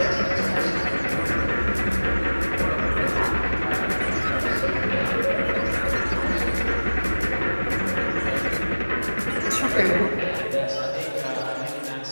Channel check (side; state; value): both; inverted; correlation -1.00